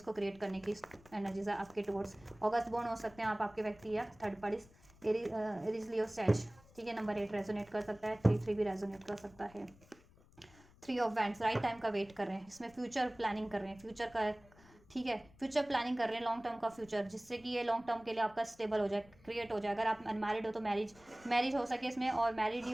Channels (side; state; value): left; noise; rumble, 25 dB below the sound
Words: क्रिएट करने की एनर्जीज है आपके टुवर्ड्स। अगस्त बोर्न हो सकते हैं आप, आपके व्यक्ति या थर्ड पार्टीज, एरीज लियो सैज, ठीक है। नंबर 8 रेजोनेट कर सकता है, 3 भी रेजोनेट कर सकता है। 3 ऑफ वैंड्स, राइट टाइम का वेट कर रहे हैं, इसमें फ्यूचर प्लानिंग कर रहे हैं, फ्यूचर का, ठीक है, फ्यूचर प्लानिंग कर रहे हैं, लॉन्ग टर्म का फ्यूचर, जिससे कि ये लॉन्ग टर्म के लिए आपका स्टेबल हो जाए, क्रिएट हो जाए। अगर आप अनमैरिड हो तो मैरिज हो सके इसमें, और मैरिड ही